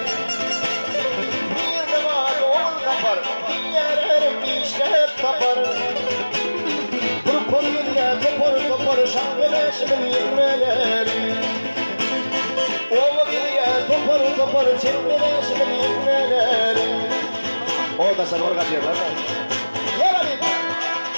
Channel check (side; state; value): both; inverted; correlation -1.00